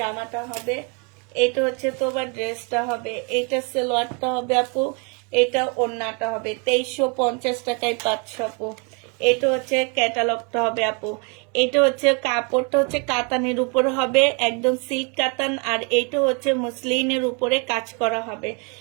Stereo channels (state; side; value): quieter; left; 34.4 dB